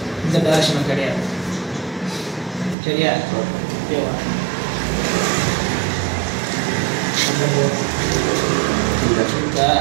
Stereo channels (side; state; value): left; drops out; at 2.8 s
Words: இந்த டைரக்ஷன் கிடையாது. சரியா? ஓகேவா?